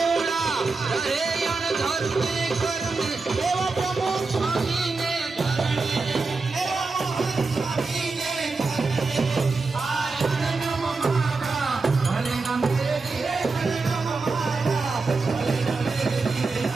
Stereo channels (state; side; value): quieter; left; 4.0 dB